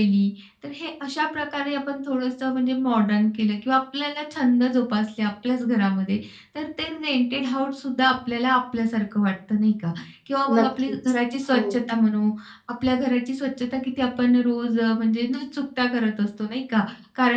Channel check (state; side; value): identical; both; correlation 1.00